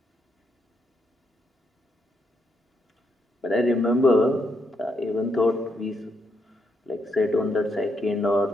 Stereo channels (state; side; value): normal; both; correlation 0.79